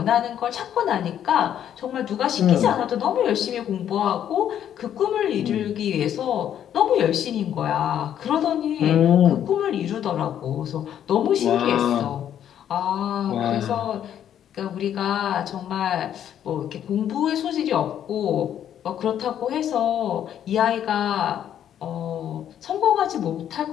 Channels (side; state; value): right; quieter; 10.0 dB